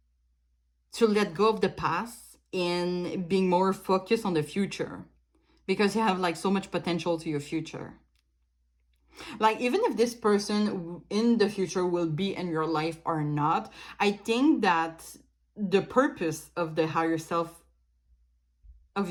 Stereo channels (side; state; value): both; identical; correlation 1.00